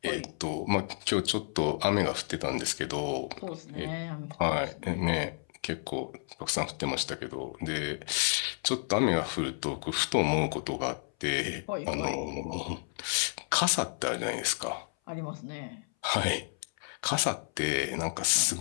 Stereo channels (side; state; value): right; silent; 57 dB below the other